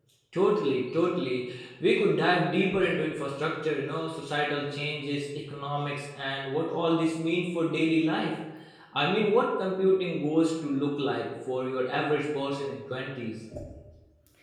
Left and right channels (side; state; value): both; identical; correlation 1.00